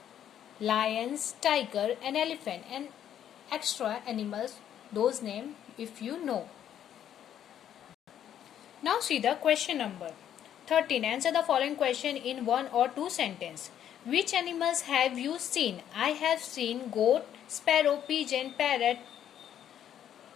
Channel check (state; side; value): quieter; right; 10.1 dB